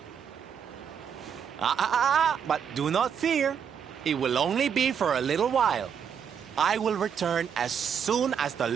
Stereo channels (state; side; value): quieter; left; 7.6 dB